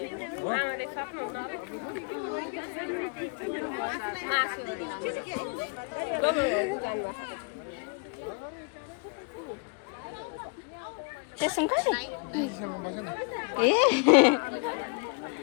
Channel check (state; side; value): quieter; right; 33.5 dB